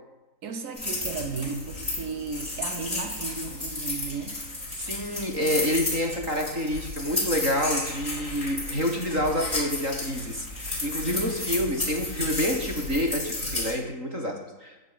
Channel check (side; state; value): left; late; 3.9 ms